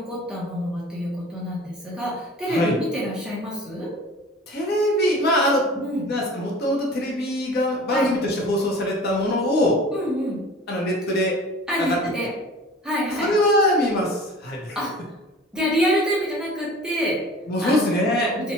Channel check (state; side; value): normal; both; correlation 0.42